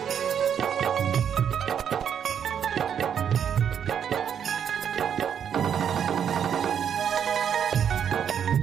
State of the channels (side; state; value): left; quieter; 8.3 dB